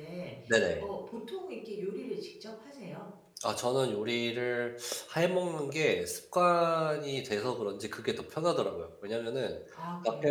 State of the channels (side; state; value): both; identical; correlation 1.00